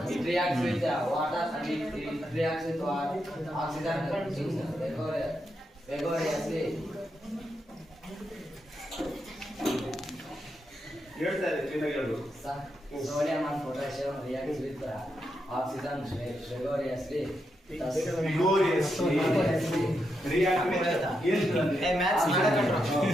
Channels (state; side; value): normal; both; correlation 0.84